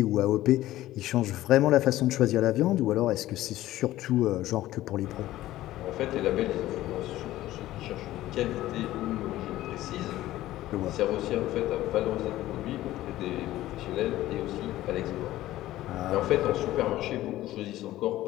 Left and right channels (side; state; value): right; quieter; 15.2 dB